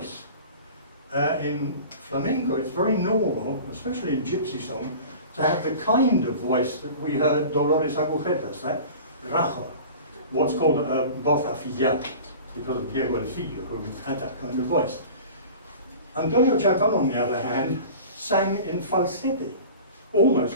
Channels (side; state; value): both; inverted; correlation -0.39